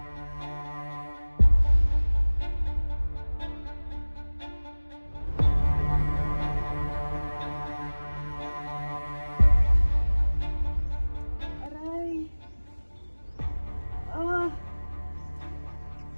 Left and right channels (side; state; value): both; inverted; correlation -1.00